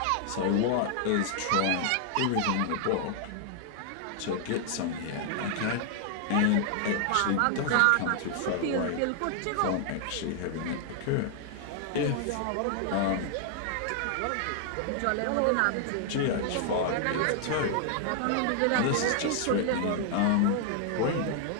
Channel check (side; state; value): both; different; correlation 0.00